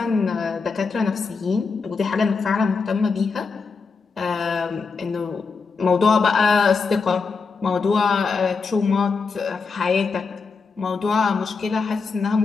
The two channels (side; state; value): right; quieter; 4.8 dB